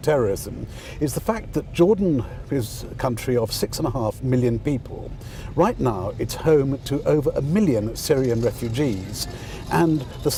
terrorism, is the fact that Jordan is a country of 6.5 million people. Right now, it's home to over 1 million Syrian refugees. And the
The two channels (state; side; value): identical; both; correlation 1.00